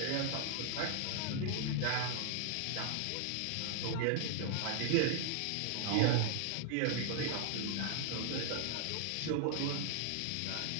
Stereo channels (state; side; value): different; both; correlation 0.00